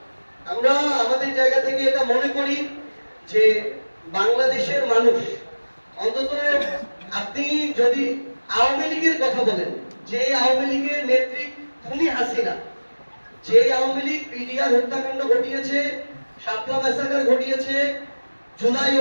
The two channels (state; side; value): inverted; both; correlation -1.00